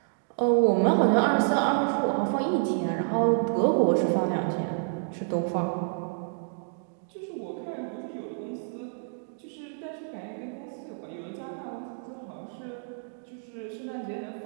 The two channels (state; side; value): silent; left; digital silence